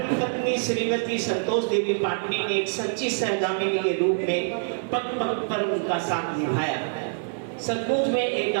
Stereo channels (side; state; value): left; silent; digital silence